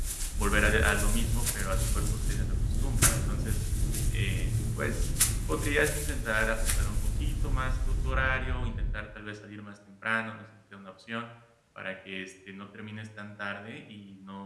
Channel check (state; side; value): identical; both; correlation 1.00